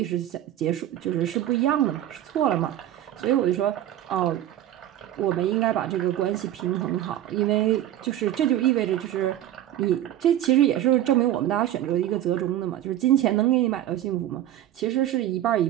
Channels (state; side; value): quieter; left; 12.3 dB